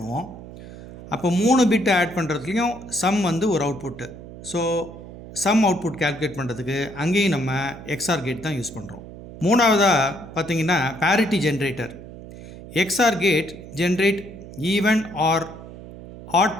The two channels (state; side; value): noise; right; hum, 15 dB below the sound